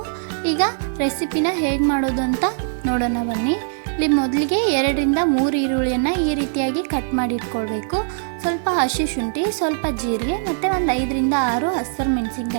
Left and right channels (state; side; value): silent; left; digital silence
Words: ಈಗ ರೆಸಿಪಿನ ಹೇಗೆ ಮಾಡೋದು ಅಂತ ನೋಡೋಣ ಬನ್ನಿ. ಇಲ್ಲಿ ಮೊದಲಿಗೆ 2-3 ಈರುಳ್ಳಿಯನ್ನು ಈ ರೀತಿಯಾಗಿ ಕಟ್ ಮಾಡಿ ಇಟ್ಕೊಳ್ಬೇಕು. ಸ್ವಲ್ಪ ಹಸಿ ಶುಂಠಿ, ಸ್ವಲ್ಪ ಜೀರಿಗೆ ಮತ್ತು ಒಂದು 5-6 ಹಸಿರು